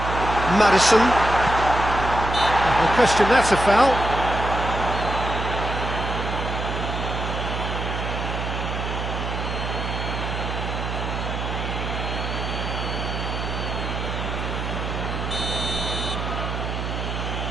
Maddison. No question, that's a foul.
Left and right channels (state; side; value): noise; right; hum, 4 dB below the sound